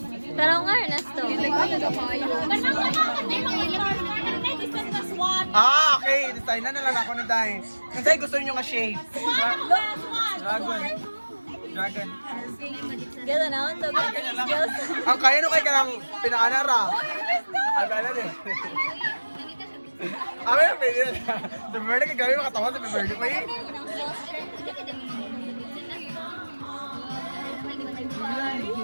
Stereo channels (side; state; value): both; inverted; correlation -1.00